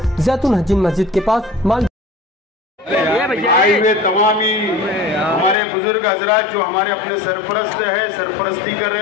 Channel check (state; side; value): drops out; right; at 5.6 s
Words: जैतून हजीन मस्जिद के पास माल। आए हुए तमामी हमारे बुजुर्ग हजरात जो हमारे अपने सरपरस्त है, सरपरस्ती कर